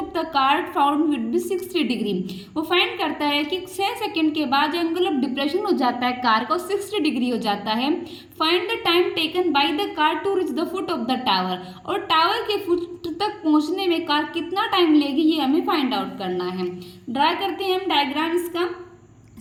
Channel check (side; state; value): both; identical; correlation 1.00